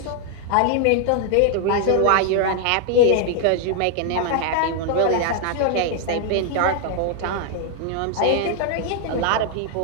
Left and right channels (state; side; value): different; both; correlation 0.00